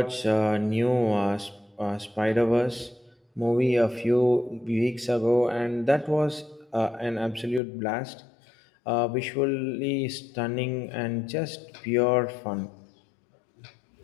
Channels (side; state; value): right; drops out; at 7.6 s